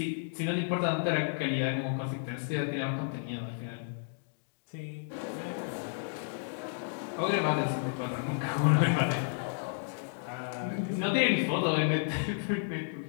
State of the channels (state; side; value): silent; right; digital silence